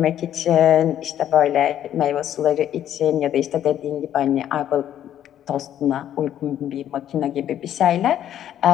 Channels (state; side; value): quieter; right; 10.9 dB